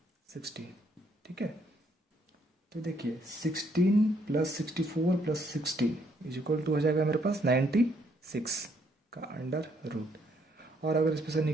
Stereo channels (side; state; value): both; normal; correlation 0.70